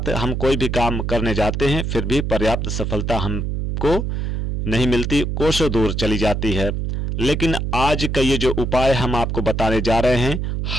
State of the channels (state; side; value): noise; right; hum, 2 dB below the sound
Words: हम कोई भी काम करने जाते हैं, फिर भी पर्याप्त सफलता हमको नहीं मिलती, कोसों दूर चली जाती है। लेकिन आज का ये जो उपाय हम आपको बताने जा रहे हैं,